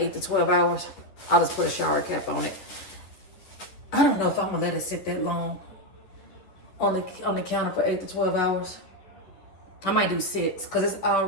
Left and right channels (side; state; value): right; late; 10 ms